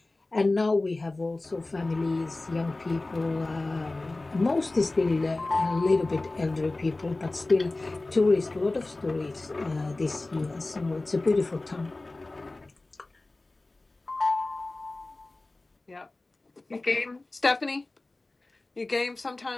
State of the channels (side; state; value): right; quieter; 3.0 dB